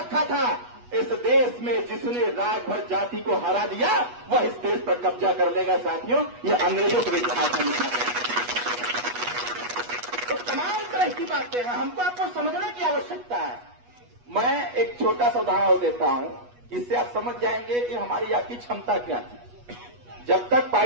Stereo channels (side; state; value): left; late; 8.2 ms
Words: था, इस देश में जिसने राजभर जाति को हरा दिया वह इस देश पर कब्जा कर लेगा। साथियों, यह अंग्रेजों के इतिहास में लिखा गया। तो तमाम तरह की बातें हैं, हमको आपको समझने की आवश्यकता है। मैं एक छोटा सा उदाहरण देता हूं, इससे आप समझ जाएंगे कि हमारी आपकी क्षमता क्या थी। जब तक